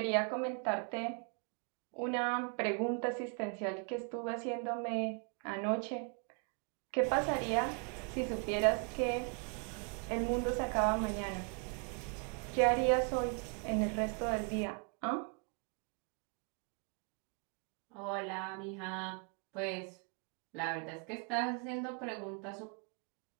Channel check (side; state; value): left; quieter; 38.5 dB